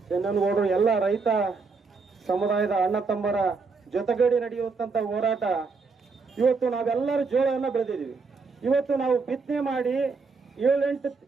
ಚೆನ್ನನಗೌಡರು ಎಲ್ಲ ರೈತ ಸಮುದಾಯದ ಅಣ್ಣ ತಮ್ಮರ ಜೊತೆಗೂಡಿ ನಡೆಯುವಂತ ಹೋರಾಟ. ಇವತ್ತು ನಾವೆಲ್ಲರೂ ಜೋಳವನ್ನು ಬೆಳೆದಿದ್ದೀವಿ. ಇವತ್ತು ನಾವು ಬಿತ್ತನೆ ಮಾಡಿ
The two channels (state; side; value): quieter; left; 4.5 dB